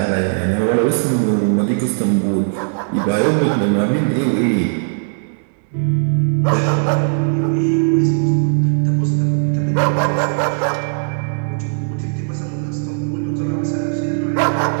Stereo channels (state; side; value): silent; left; digital silence